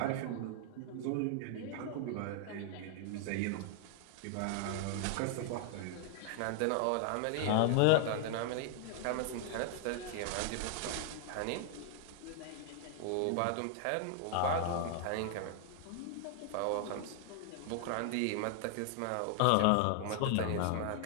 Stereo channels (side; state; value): both; different; correlation 0.00